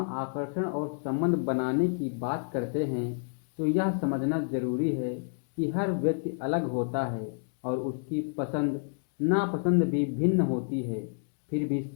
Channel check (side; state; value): right; silent; digital silence